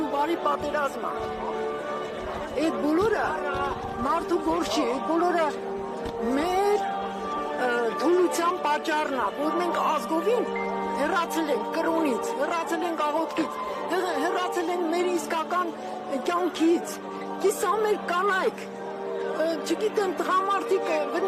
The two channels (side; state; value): both; identical; correlation 1.00